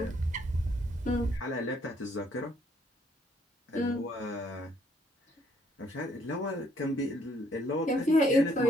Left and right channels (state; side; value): normal; both; correlation 0.67